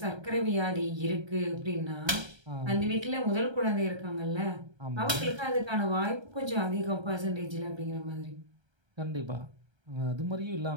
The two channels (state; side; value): late; left; 1.3 ms